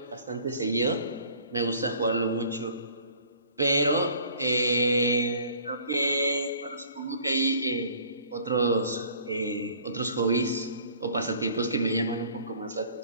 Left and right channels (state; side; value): inverted; both; correlation -0.52